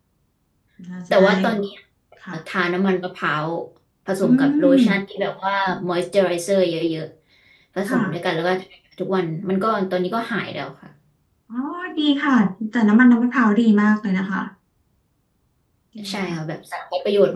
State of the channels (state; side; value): identical; both; correlation 1.00